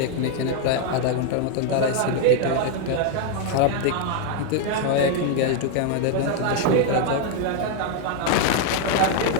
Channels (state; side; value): different; both; correlation 0.00